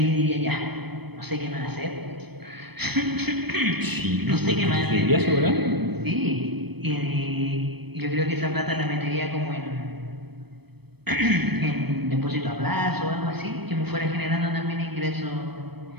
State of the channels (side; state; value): left; late; 0.98 ms